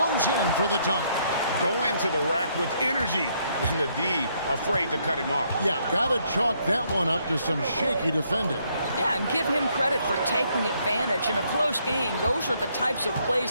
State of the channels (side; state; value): both; inverted; correlation -0.71